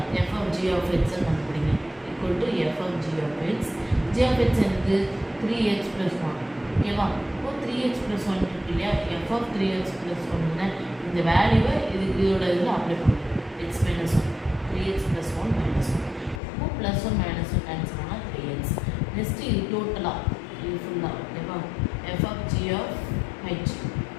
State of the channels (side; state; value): right; drops out; at 16.4 s